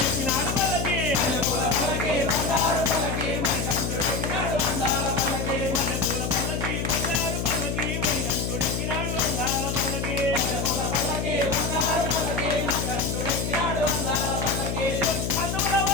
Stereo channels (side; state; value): left; noise; hum, 2 dB below the sound